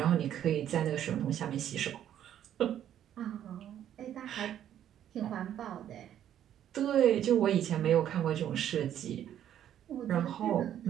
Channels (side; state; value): left; quieter; 10.6 dB